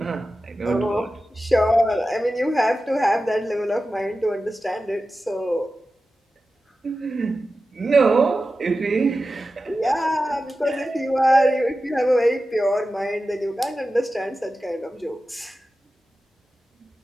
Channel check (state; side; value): normal; both; correlation 0.93